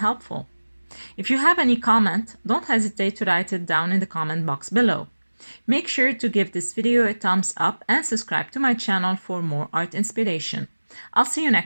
If you have any comment, don't hesitate to write it down in the comment box below. Make sure to give this video a thumbs up and subscribe to my channel for more art inspiration. I'll see you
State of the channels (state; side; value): inverted; both; correlation -1.00